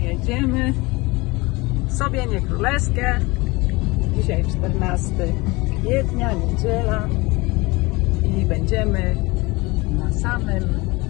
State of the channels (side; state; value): right; quieter; 23.5 dB